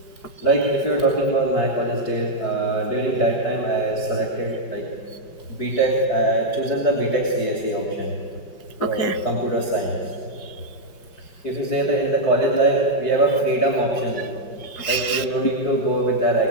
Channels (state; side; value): late; right; 5.2 ms